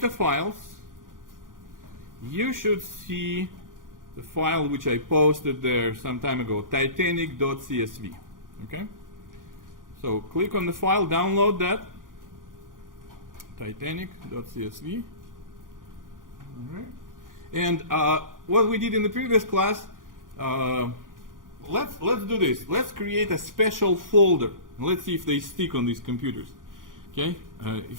Files, you should see the file which I posted there some time ago, titanic.csv. Okay? So click on the file, download that, titanic.csv. All right. And what we did in the previous class, let's do this. Let's create a special folder. Let's see if they stick on these computers. Okay,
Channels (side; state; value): left; late; 0.90 ms